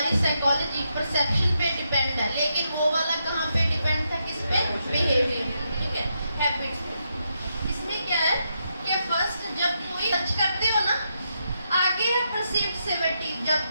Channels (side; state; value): both; inverted; correlation -0.82